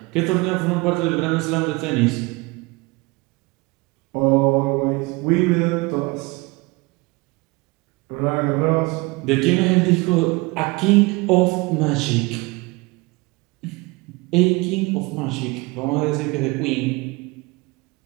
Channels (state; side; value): quieter; left; 24.8 dB